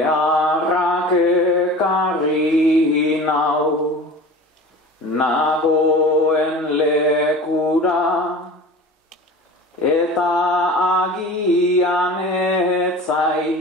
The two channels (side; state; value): both; normal; correlation 0.37